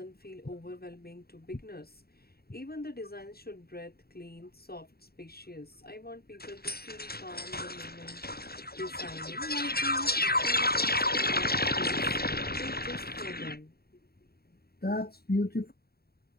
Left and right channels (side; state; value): right; late; 0.45 ms